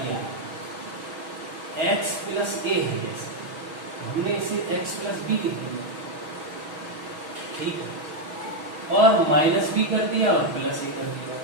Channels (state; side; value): late; left; 6.2 ms